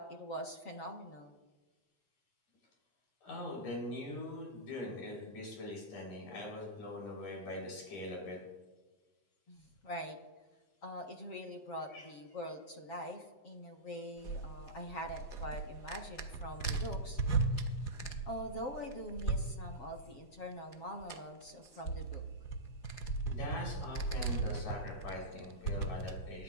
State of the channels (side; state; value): right; late; 8.2 ms